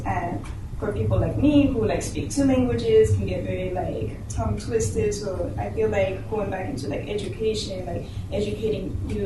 And for people like me who like speak two languages can get very like tongue twisted. So I feel like going back into like education, like educating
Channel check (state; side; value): identical; both; correlation 1.00